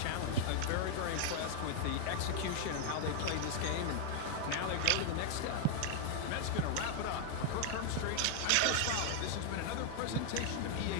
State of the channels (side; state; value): both; different; correlation 0.00